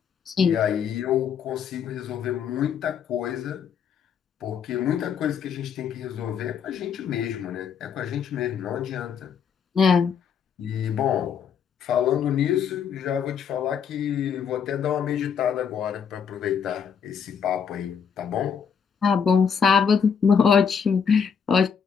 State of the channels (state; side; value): quieter; right; 7.0 dB